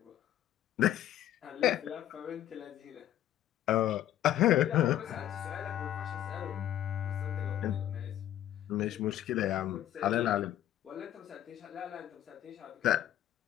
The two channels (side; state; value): right; quieter; 12.0 dB